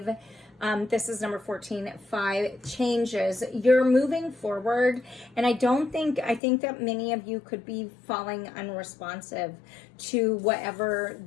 This is number 14, 5 changes. You're moving forward, and I think that many of you could be falling unresponsive to whatever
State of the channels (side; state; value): right; drops out; at 6.4 s